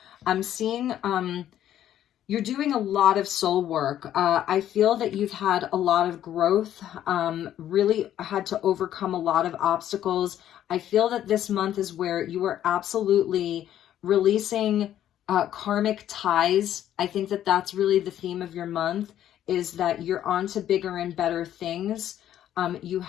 I'm seeing you're doing a lot of soul work. I feel that you've had a lot of growth, really had to overcome a lot of obstacles. I feel that this month is where you are absolutely releasing karmic ties. I think that that's really the theme of your month, is that you're on to bigger and better things. You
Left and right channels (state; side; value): quieter; right; 11.4 dB